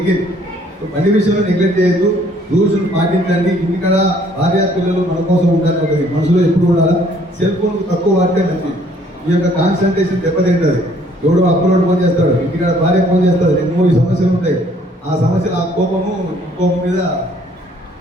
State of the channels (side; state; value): both; normal; correlation 0.61